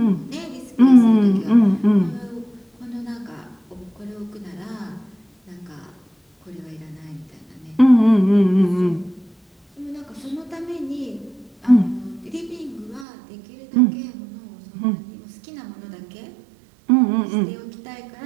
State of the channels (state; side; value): drops out; left; at 13.1 s